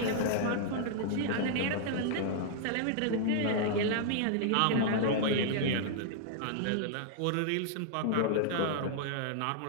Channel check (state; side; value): different; both; correlation -0.01